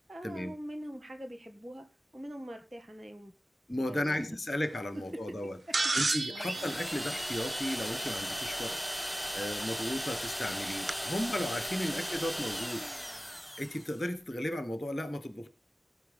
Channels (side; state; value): both; normal; correlation 0.96